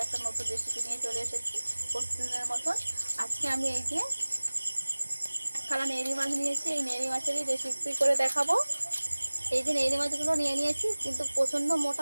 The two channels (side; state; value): both; inverted; correlation -1.00